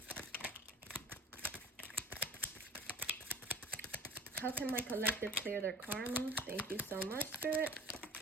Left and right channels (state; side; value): normal; both; correlation 0.44